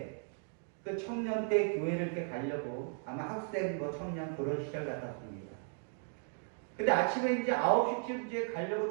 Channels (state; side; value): silent; left; 54 dB below the other